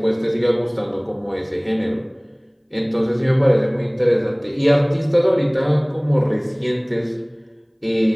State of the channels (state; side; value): identical; both; correlation 1.00